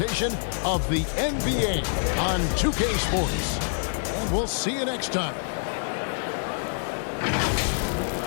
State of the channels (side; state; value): right; silent; digital silence